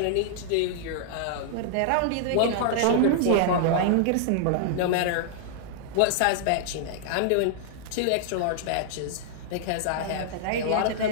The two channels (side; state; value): both; different; correlation -0.01